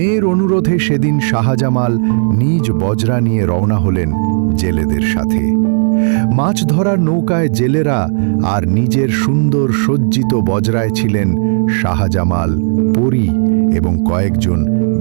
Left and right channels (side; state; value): left; silent; digital silence